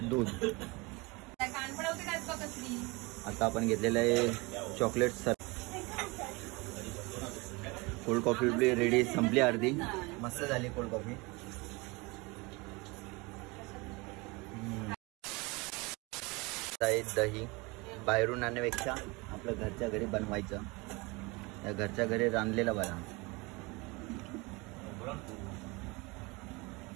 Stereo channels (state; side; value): quieter; left; 25.7 dB